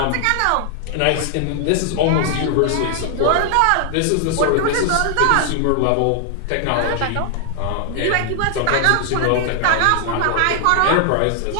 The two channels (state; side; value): different; both; correlation 0.00